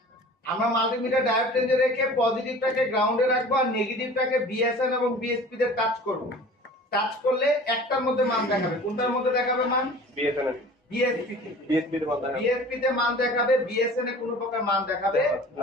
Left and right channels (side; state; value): both; normal; correlation 0.43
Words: আমরা মাল্টিমিটার ডায়োড রেঞ্জে রেখে পজিটিভটাকে গ্রাউন্ডে রাখবো আর নেগেটিভটাকে বিএসএন এবং বিএসপি তে টাচ করব। টাচ করলে একটার মধ্যে মান দেখাবে। কোনটার মধ্যে দেখাবে মান? বিএসএন এর। বিএসপি তে। বিএসপি তে মান দেখাবে। বিএসপি তে মান দেখাবে, বিএসএন এ কোনো প্রকার মান দেখাবে